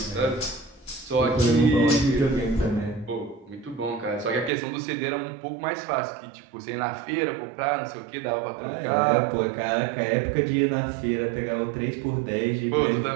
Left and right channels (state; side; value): drops out; left; at 4.5 s